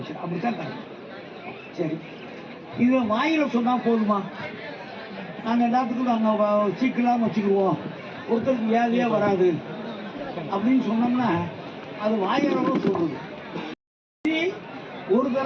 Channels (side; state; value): both; identical; correlation 1.00